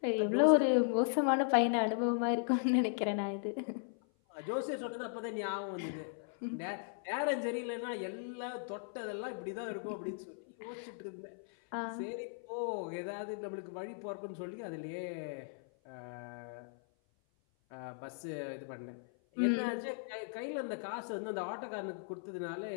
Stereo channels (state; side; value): silent; right; 53 dB below the other